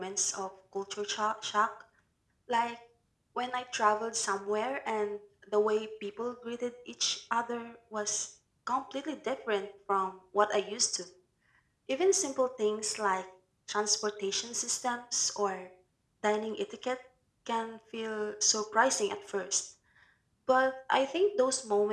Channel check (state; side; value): identical; both; correlation 1.00